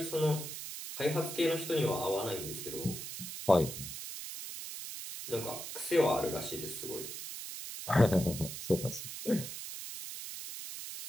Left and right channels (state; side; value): noise; right; hiss, 8 dB below the sound